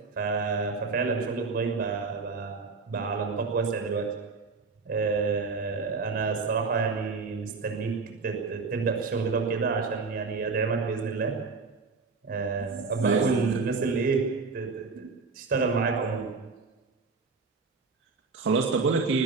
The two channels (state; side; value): quieter; left; 4.4 dB